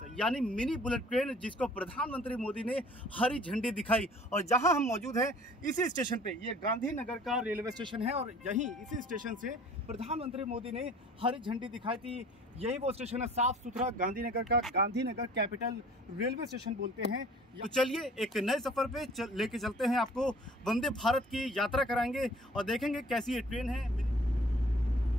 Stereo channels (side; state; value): both; normal; correlation 0.50